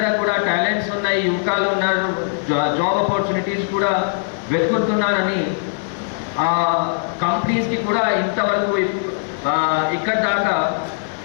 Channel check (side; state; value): right; silent; digital silence